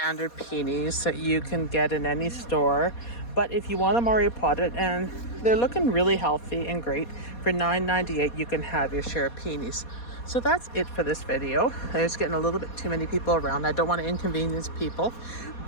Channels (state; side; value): late; right; 4.2 ms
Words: peonies that you can get in any store. But if you want them already potted, and they're looking really healthy and great, for $9.98 you can have your share of peonies. So that's it for this video. There's getting a little bit too many people around. I don't want to inconvenience people.